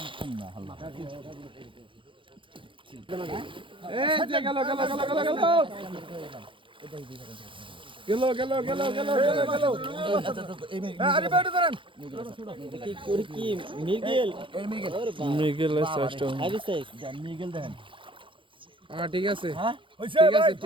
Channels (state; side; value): late; left; 0.25 ms